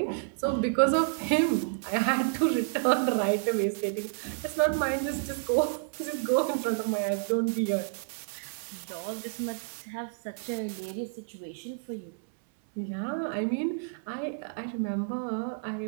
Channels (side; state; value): left; silent; 58 dB below the other